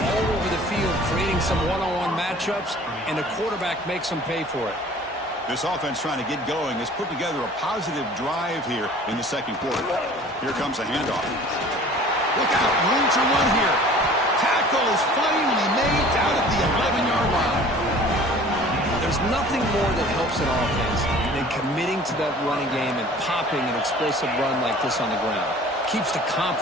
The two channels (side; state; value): both; normal; correlation 0.47